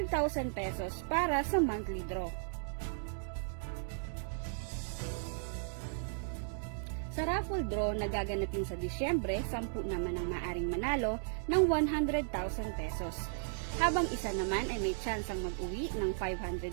pesos para sa monthly draw. Sa raffle draw na gaganapin sa Disyembre, 10 naman ang maaring manalo ng 100,000 pesos. Habang isa naman ay may tsansang mag-uwi ng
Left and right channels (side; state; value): left; silent; digital silence